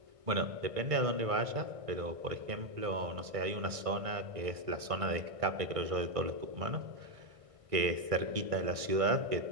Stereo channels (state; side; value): late; left; 1.6 ms